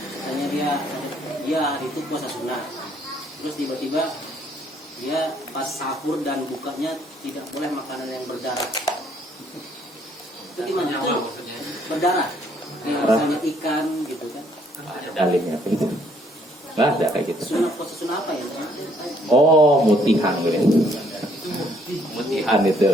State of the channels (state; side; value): normal; both; correlation 0.66